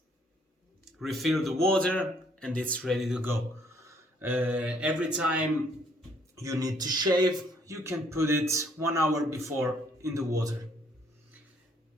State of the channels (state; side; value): normal; both; correlation 0.65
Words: refill the water, and it's ready to go. Every time you need to shave, you can put it 1 hour before in the water,